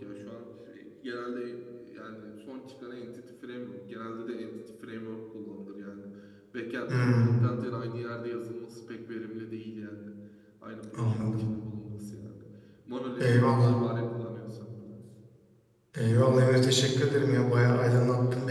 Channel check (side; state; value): both; identical; correlation 1.00